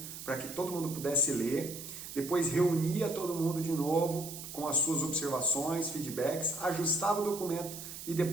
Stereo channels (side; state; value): right; noise; hiss, 10 dB below the sound